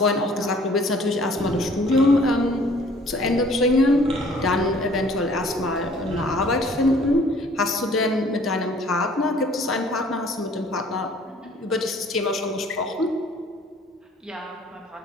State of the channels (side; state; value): both; normal; correlation 0.55